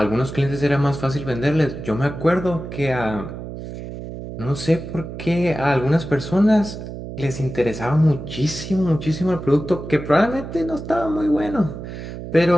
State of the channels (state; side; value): noise; right; hum, 9 dB below the sound